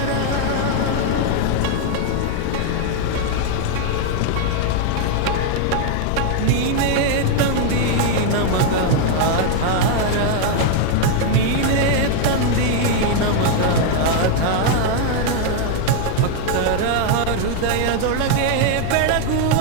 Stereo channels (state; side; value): different; both; correlation 0.00